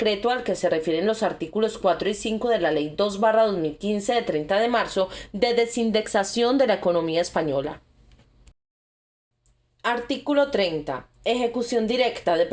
al que se refieren los artículos 4 y 5 de la Ley 2/2015 de 30 de marzo de desindexación de la economía española. Artículo 30. Ejecución directa de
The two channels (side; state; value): both; identical; correlation 1.00